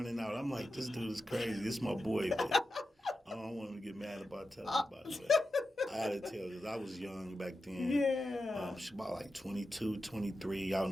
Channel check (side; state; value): both; normal; correlation 0.91